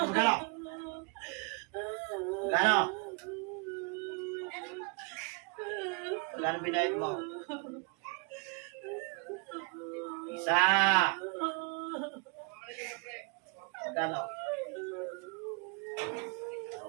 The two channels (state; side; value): quieter; left; 34.0 dB